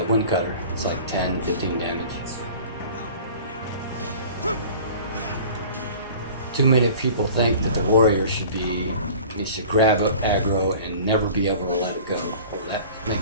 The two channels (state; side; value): inverted; both; correlation -0.43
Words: wind cutter. It's like 10, 15 damage. Too many people think that the warrior should grab up aggro and never be able to let it go. Well, that